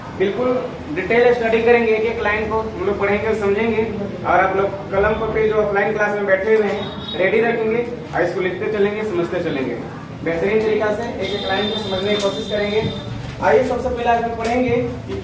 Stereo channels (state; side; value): identical; both; correlation 1.00